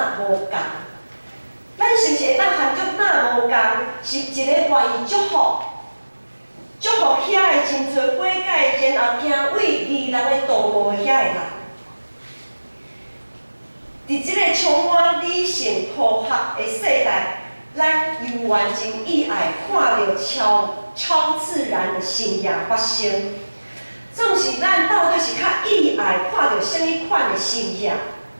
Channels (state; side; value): inverted; both; correlation -1.00